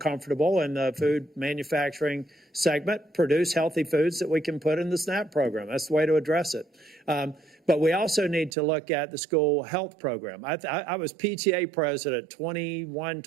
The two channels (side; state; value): left; drops out; at 8.5 s